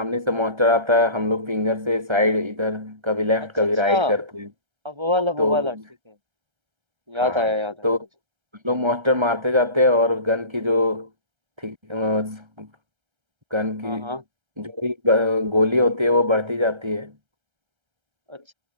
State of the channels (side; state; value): left; late; 1.3 ms